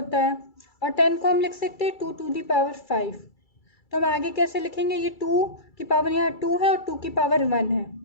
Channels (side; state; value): right; late; 2.3 ms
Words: है, और 10 को हम लिख सकते हैं 2 to the power 5। तो हम आगे कैसे लिखेंगे, ये 2 की पावर यहाँ 2 है और 2 की पावर 1 है,